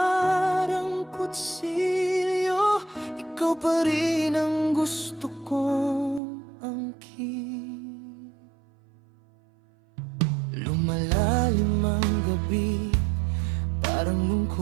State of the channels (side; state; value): left; drops out; at 6.2 s